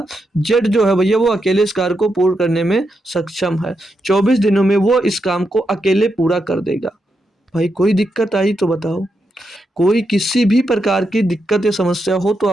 जेड जो है भैया वो अकेले इस कार्य को पूर्ण करने में सक्षम है। 24 दिनों में वो इस काम को अकेले पूरा कर देगा। भाई कोई दिक्कत आई तो बताओ, कोई किसी भी प्रकार की दिक्कत या समस्या हो तो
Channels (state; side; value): normal; both; correlation 0.84